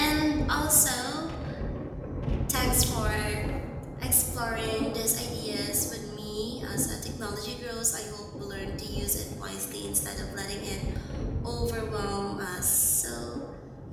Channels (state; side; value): identical; both; correlation 1.00